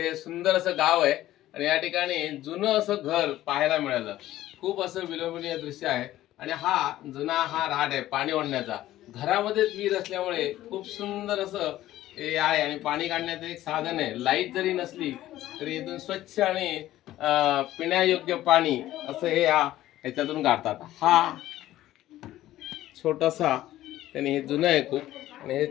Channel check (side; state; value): right; quieter; 14.5 dB